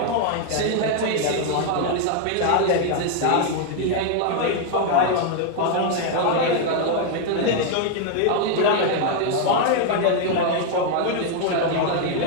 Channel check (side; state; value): both; different; correlation 0.00